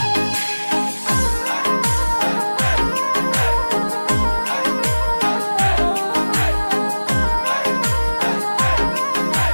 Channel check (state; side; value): inverted; both; correlation -1.00